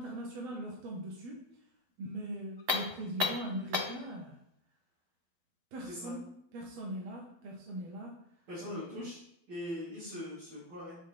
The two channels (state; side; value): late; left; 12 ms